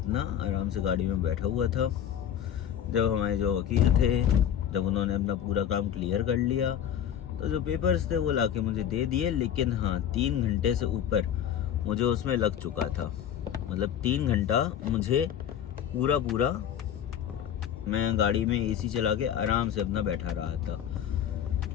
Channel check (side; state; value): right; quieter; 9.6 dB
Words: आराम से गाड़ी में बैठा हुआ था, जब हमारे जो वकील थे, जब उन्होंने अपना पूरा काम क्लियर कर लिया, तो जो पेपर्स थे वो लाके मुझे दे दिए। लेकिन हाँ, 3 घंटे से ऊपर मुझे उसमें लग चुका था। मतलब 3 घंटा मुझे पूरा मैं गाड़ी में एसी चला के आराम से अपना बैठा रहा था।